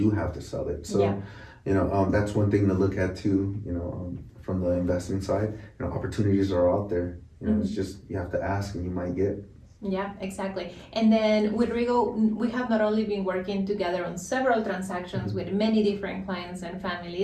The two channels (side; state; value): both; identical; correlation 1.00